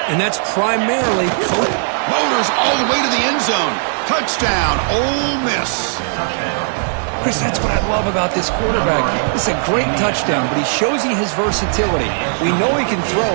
and that's primarily coach. Motors all the way to the end zone. Touchdown, Ole Miss. Chris, that's what I love about this quarterback. It's a great touchdown, but he shows you his versatility. We know he can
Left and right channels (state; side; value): silent; left; 60 dB below the other